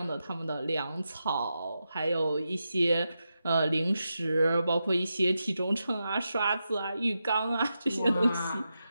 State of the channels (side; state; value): both; inverted; correlation -0.88